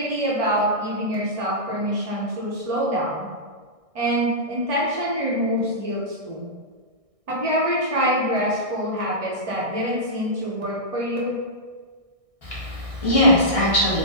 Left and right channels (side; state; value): left; late; 1.6 ms